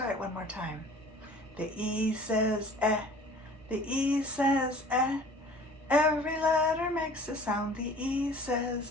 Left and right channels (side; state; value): both; normal; correlation 0.47